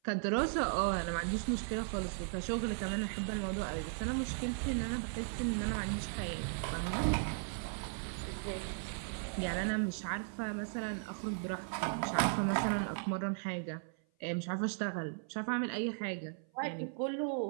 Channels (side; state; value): left; silent; 53 dB below the other